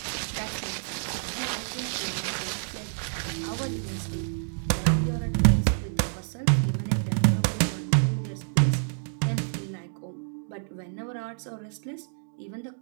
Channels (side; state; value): left; silent; digital silence